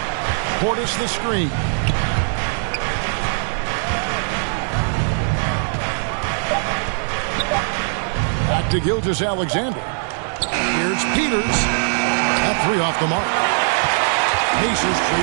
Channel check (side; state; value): left; silent; 60 dB below the other